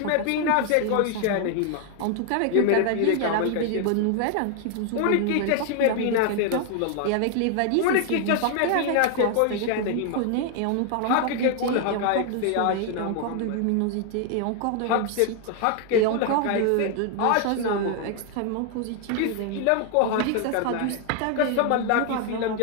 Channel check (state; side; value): different; both; correlation 0.00